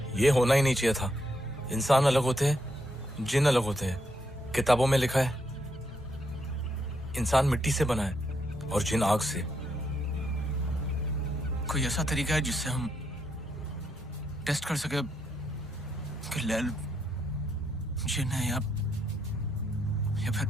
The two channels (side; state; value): both; normal; correlation 0.78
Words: ये होना ही नहीं चाहिए था। इंसान अलग होते हैं, जिन अलग होते हैं। किताबों में लिखा है इंसान मिट्टी से बना है और जिन आग से। कोई ऐसा तरीका है जिससे हम टेस्ट कर सके कि लैल जिन है या फिर